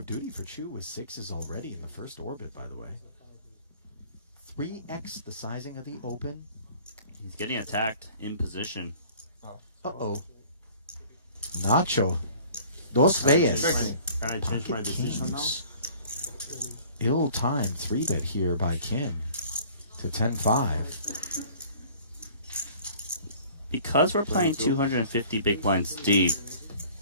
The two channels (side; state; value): both; inverted; correlation -0.50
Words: duty for Chu with 6s already in the first orbit, by the way. 3x the sizing of the Open. He's getting attacked in position. Uh-oh. Nacho. Dos veces. Can I change my decision now? Ill-timed 3-bet here by Kim to 10-5. Because we're playing 250 big blinds deep,